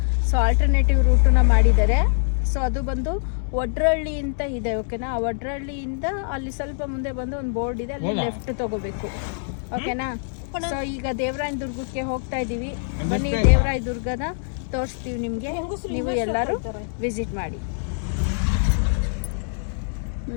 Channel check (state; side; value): silent; right; 63 dB below the other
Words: ಸೊ ಆಲ್ಟರ್ನೇಟಿವ್ ರೂಟನ್ನ ಮಾಡಿದ್ದಾರೆ. ಸೊ ಅದು ಬಂದು ಒಡ್ರಳ್ಳಿ ಅಂತ ಇದೆ, ಓಕೆನಾ. ಆ ಒಡ್ರಳ್ಳಿಯಿಂದ ಅಲ್ಲಿ ಸ್ವಲ್ಪ ಮುಂದೆ ಬಂದು ಒಂದು ಬೋರ್ಡ್ ಇದೆ, ಅಲ್ಲಿ ಲೆಫ್ಟ್ ತಗೋಬೇಕು, ಓಕೆನಾ. ಸೊ ಈಗ ದೇವರಾಯನ ದುರ್ಗಕ್ಕೆ ಹೋಗ್ತಾ ಇದೀವಿ. ಬನ್ನಿ, ದೇವರಾಯ ದುರ್ಗನ ತೋರಿಸ್ತೀವಿ ನಿಮ್ಗೆ, ನೀವು ಎಲ್ಲರೂ ವಿಸಿಟ್ ಮಾಡಿ.